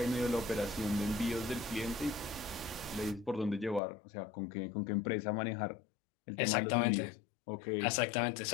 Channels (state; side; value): drops out; right; at 3.8 s